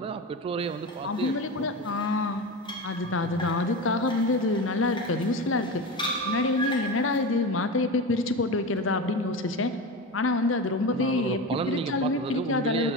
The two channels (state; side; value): normal; both; correlation 0.24